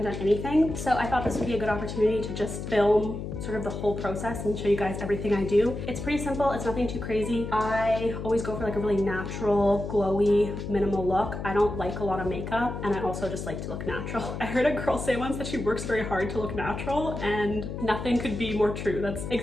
done anything. So I thought this would be a good opportunity to just film sort of the whole process and show you guys everything I do. It's pretty simple, it's nothing too crazy. I always go for like a really natural, glowy, minimal look. I don't like a lot of makeup and I also just like to look natural. I heard a girl say once that she works very hard to look natural and nothing could be more true. That's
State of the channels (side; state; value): left; noise; hum, 6 dB below the sound